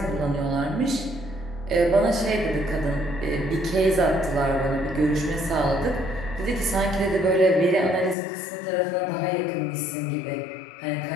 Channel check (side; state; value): right; drops out; at 8.2 s